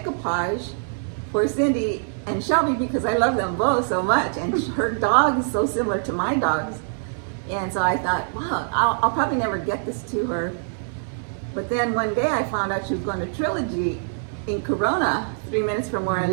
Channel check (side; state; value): left; silent; digital silence